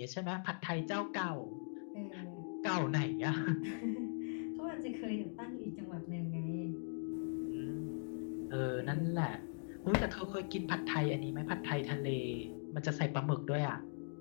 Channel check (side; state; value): right; silent; digital silence